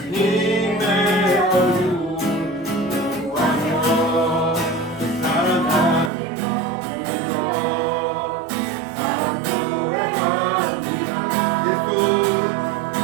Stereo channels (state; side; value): drops out; left; at 6.1 s